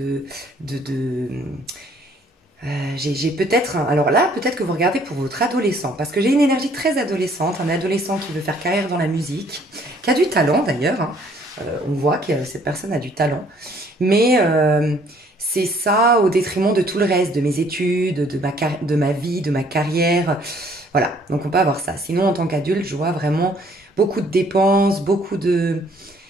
j'ai peut-être, alors là, peut-être que vous regardez pour votre adolescent, parce que j'ai une énergie très adolescente, un adolescent qui veut faire carrière dans la musique, qui a du talent d'ailleurs, hein. On voit que cette personne a du talent, mais c'est ça au détriment de tout le reste, de mes études, de ma vie, de ma carrière, voilà, donc on peut avoir ça. Sinon, en tant qu'adulte, je vois vraiment beaucoup de dépenses, beaucoup de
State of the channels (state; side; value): normal; both; correlation 0.61